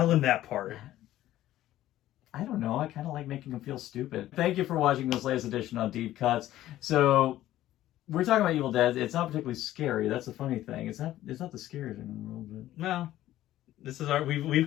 him that part. I don't know. I kind of like making them feel stupid. Thank you for watching this latest edition on Deep Cuts. So, we're talking about Evil Dead. It's not particularly scary. That's the funny thing. It's not the scariest thing in the world. But... No. This is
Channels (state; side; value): quieter; right; 14.1 dB